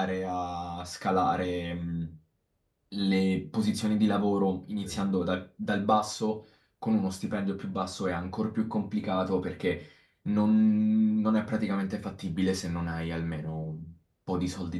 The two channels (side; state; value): both; identical; correlation 1.00